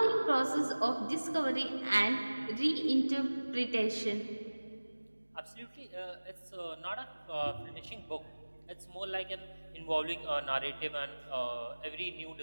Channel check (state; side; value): inverted; both; correlation -1.00